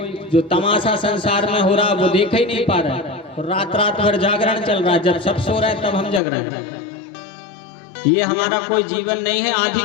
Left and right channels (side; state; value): right; drops out; at 6.2 s